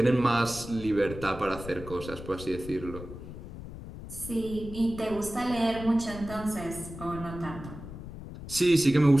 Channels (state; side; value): noise; left; rumble, 12 dB below the sound